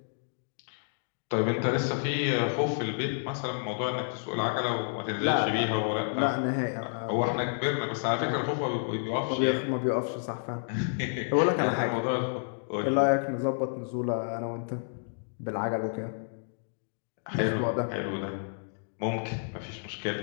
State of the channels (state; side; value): silent; right; digital silence